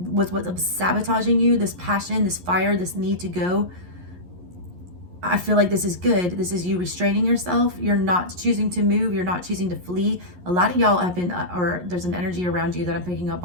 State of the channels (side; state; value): left; late; 11 ms